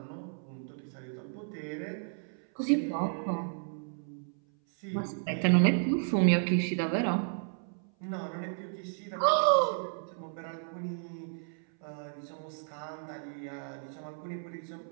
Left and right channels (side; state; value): left; silent; 56 dB below the other